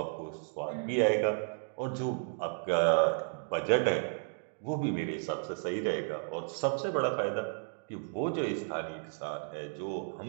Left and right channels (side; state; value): left; silent; digital silence